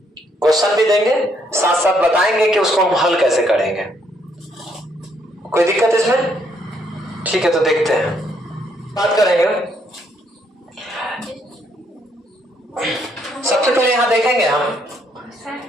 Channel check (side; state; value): both; normal; correlation 0.71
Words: क्वेश्चन भी देंगे साथ साथ बताएंगे कि उसको हम हल कैसे करेंगे। कोई दिक्कत इसमें? ठीक है, तो देखते हैं, बात करेंगे। सबसे पहले यहां देखेंगे हम